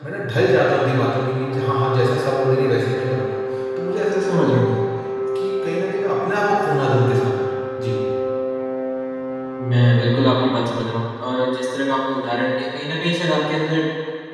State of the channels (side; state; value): both; identical; correlation 1.00